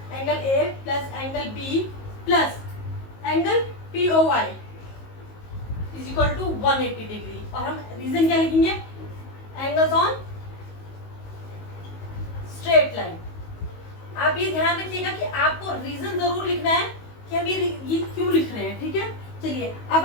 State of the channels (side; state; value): right; late; 19 ms